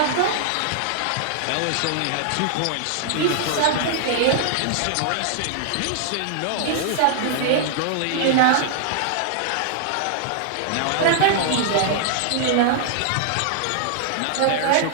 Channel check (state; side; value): different; both; correlation -0.01